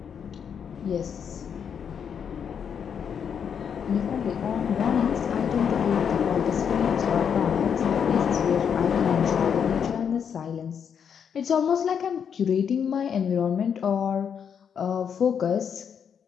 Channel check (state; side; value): quieter; right; 7.5 dB